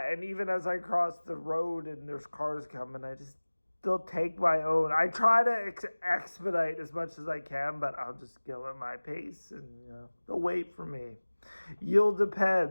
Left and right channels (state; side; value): inverted; both; correlation -1.00